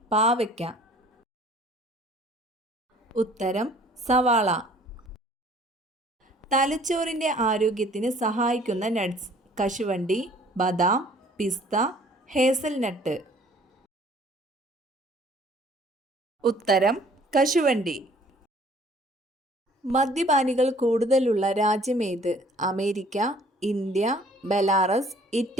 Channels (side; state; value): both; normal; correlation 0.56